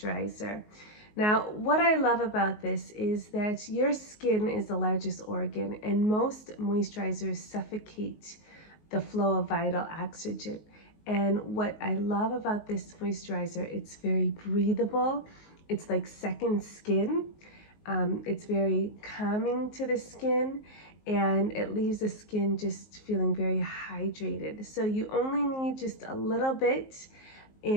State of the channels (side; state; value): right; late; 19 ms